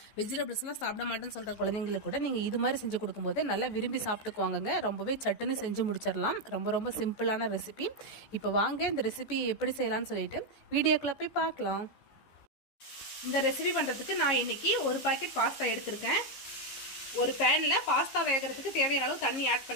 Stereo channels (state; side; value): late; right; 14 ms